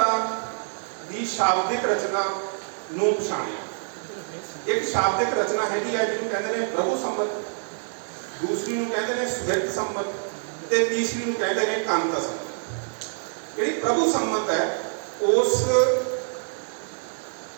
ਦੀ ਸ਼ਾਬਦਿਕ ਰਚਨਾ ਨੂੰ ਪਛਾਣਿਆ। ਇੱਕ ਸ਼ਾਬਦਿਕ ਰਚਨਾ ਹੈਗੀ ਹੈ ਜਿਹਨੂੰ ਕਹਿੰਦੇ ਨੇ ਪ੍ਰਭੂ ਸੰਮਤ, ਦੂਸਰੀ ਨੂੰ ਕਹਿੰਦੇ ਨੇ ਸੁਹਿਰਦ ਸੰਮਤ ਤੇ ਤੀਸਰੀ ਨੂੰ ਕਹਿੰਦੇ ਨੇ ਕਾਂਤਾ ਸੰਮਤ। ਜਿਹੜੀ ਪ੍ਰਭੂ ਸੰਮਤ ਹੈ ਉਸ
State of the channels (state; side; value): silent; left; 61 dB below the other